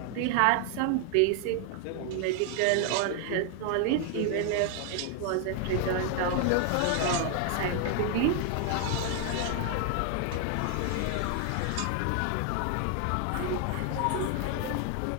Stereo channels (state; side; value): different; both; correlation 0.00